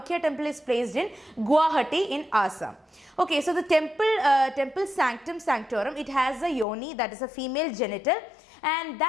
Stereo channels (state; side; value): drops out; right; at 6.7 s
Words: temple is placed in Guwahati in Assam. Okay, so the temple sanctum sanctorum, it has a yoni, that is a female genital, and